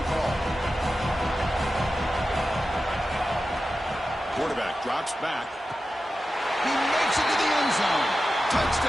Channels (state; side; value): normal; both; correlation 0.92